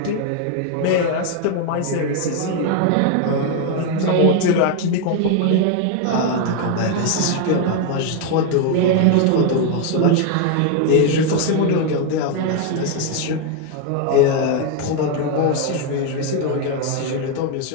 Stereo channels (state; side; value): different; both; correlation 0.01